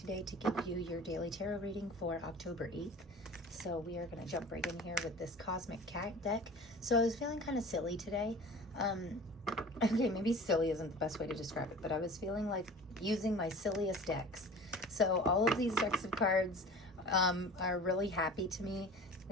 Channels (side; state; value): both; normal; correlation 0.40